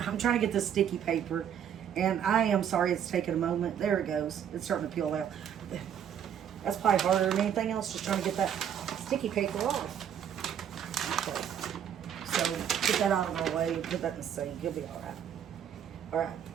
trying to get this sticky paper and I am sorry it's taking a moment. There it goes. It's starting to peel out. That's probably harder than anything else, just trying to get that sticky paper off. Okay. So get that out of my way, put that in the sink. You'll be alright. Alright.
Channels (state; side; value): quieter; left; 9.0 dB